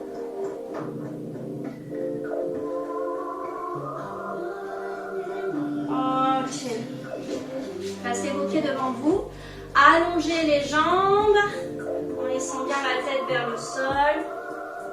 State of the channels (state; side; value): identical; both; correlation 1.00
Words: Ok. Placez vos pieds devant vous. Allongez les jambes en laissant bien la tête vers le